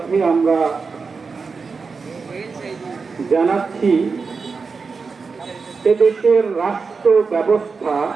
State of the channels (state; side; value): quieter; left; 4.8 dB